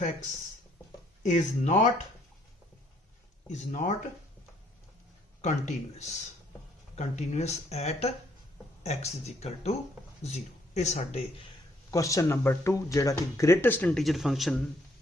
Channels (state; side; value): normal; both; correlation 0.67